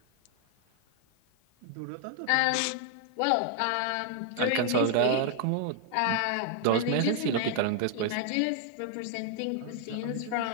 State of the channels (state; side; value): different; both; correlation 0.00